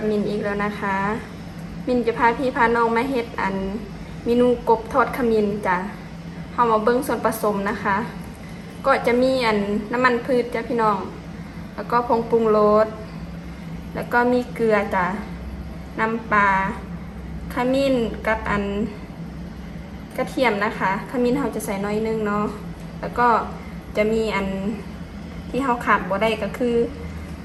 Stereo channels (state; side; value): identical; both; correlation 1.00